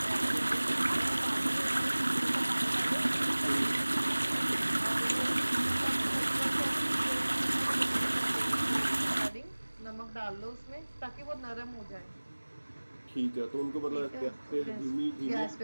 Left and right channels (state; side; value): inverted; both; correlation -1.00